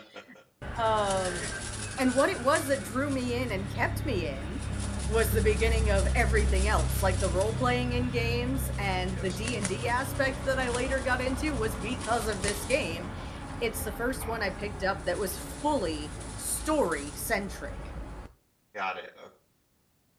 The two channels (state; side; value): identical; both; correlation 1.00